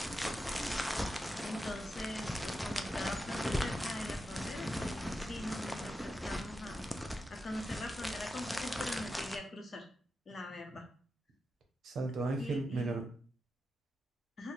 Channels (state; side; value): normal; both; correlation 0.88